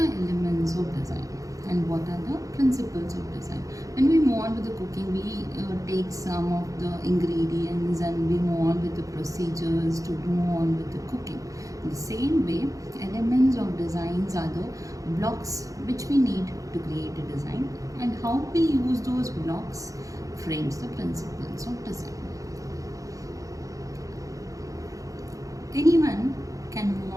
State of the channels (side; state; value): left; late; 0.16 ms